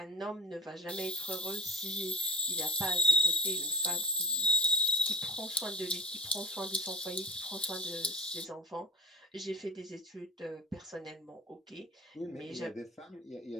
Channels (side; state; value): both; normal; correlation 0.35